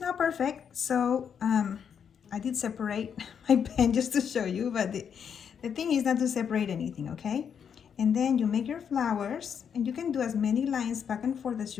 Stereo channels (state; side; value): quieter; right; 7.6 dB